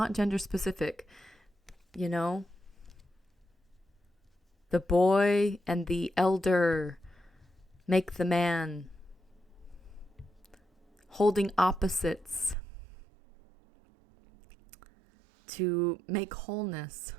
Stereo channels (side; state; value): left; drops out; at 12.6 s